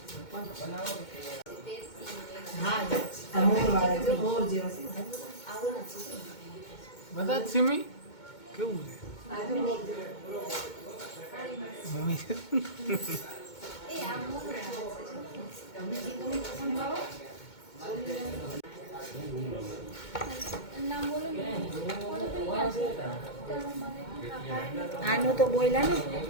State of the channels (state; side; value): late; right; 2.2 ms